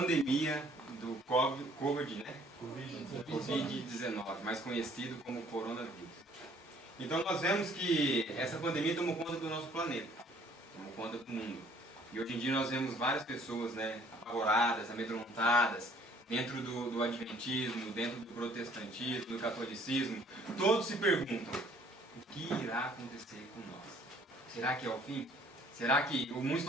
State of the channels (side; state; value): both; normal; correlation 0.58